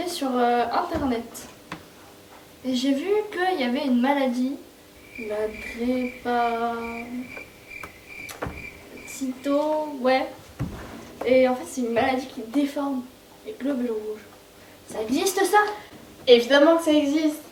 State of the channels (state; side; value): identical; both; correlation 1.00